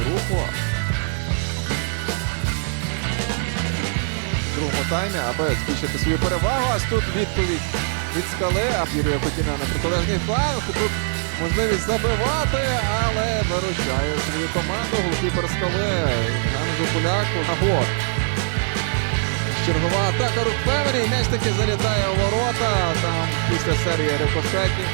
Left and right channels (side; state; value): left; silent; digital silence